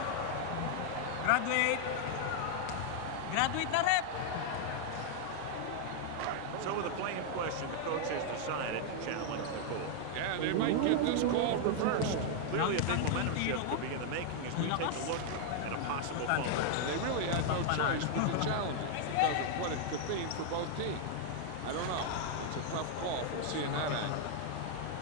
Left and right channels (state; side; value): different; both; correlation 0.00